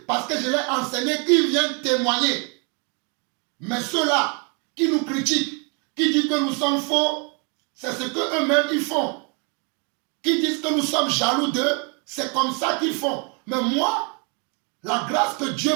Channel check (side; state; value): left; quieter; 35.2 dB